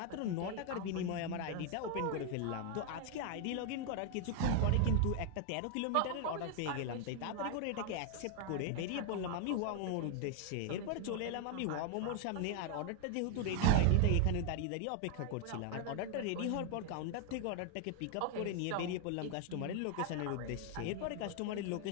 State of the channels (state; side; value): different; both; correlation 0.00